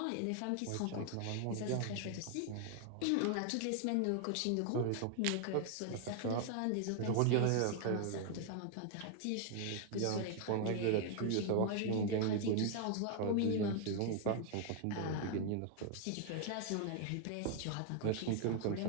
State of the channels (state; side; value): different; both; correlation 0.00